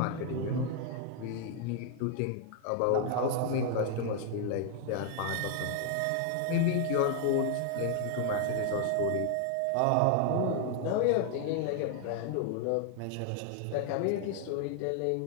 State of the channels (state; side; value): different; both; correlation 0.00